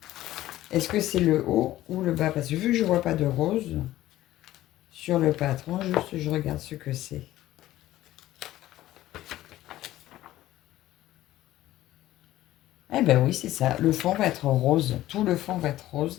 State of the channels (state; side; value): quieter; right; 14.9 dB